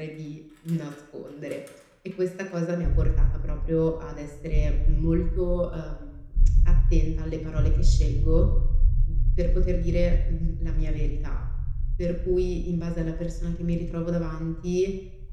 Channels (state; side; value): identical; both; correlation 1.00